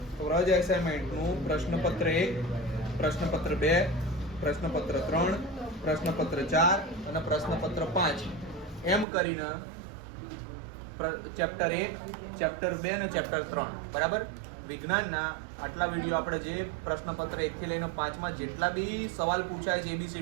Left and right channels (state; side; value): drops out; left; at 9.1 s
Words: વ્રજ એસાઇનમેન્ટનું પ્રશ્નપત્ર 1, પ્રશ્નપત્ર 2, પ્રશ્નપત્ર 3, પ્રશ્નપત્ર 4 અને પ્રશ્નપત્ર 5 એમ કરીને ચેપ્ટર 1, ચેપ્ટર 2 અને ચેપ્ટર 3 બરાબર. વિજ્ઞાનના આટલા વિડીયો આપણે જે પ્રશ્નપત્ર 1 થી લઈને 5 માં જેટલા બી સવાલ પૂછાય છે